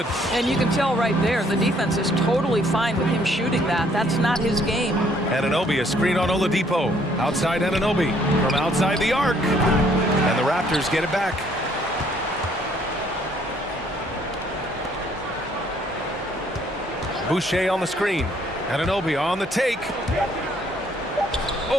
And you can tell right there, the defense is totally fine with him shooting that. That's not his game. Anunoby, a screen on Oladipo. Outside Anunoby from outside the arc. And the Raptors get it back. Boucher on the screen. Anunoby on the take.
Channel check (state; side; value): normal; both; correlation 0.64